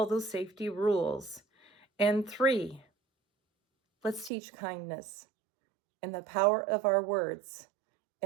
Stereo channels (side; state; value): left; drops out; at 4.3 s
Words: those safety rules. And 3, let's teach kindness and the power of our words,